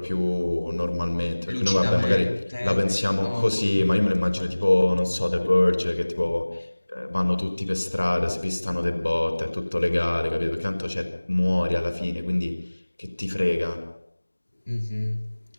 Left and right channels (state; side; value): inverted; both; correlation -1.00